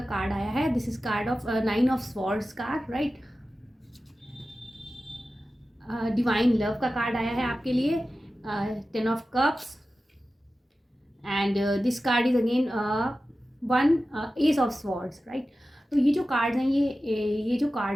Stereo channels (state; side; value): normal; both; correlation 0.94